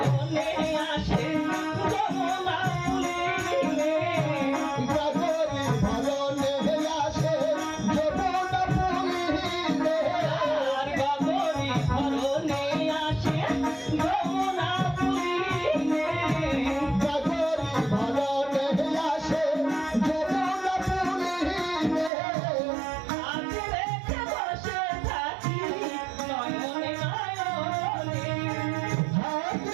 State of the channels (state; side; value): drops out; left; at 22.1 s